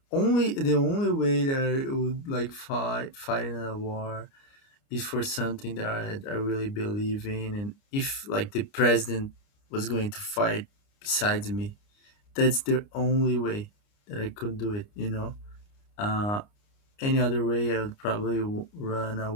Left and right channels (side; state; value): right; late; 29 ms